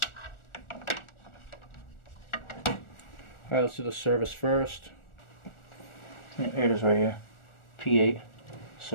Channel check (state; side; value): late; right; 1.4 ms